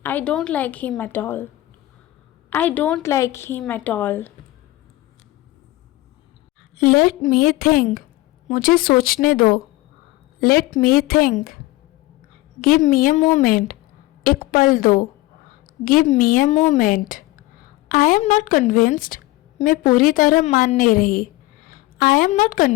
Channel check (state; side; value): quieter; right; 18.6 dB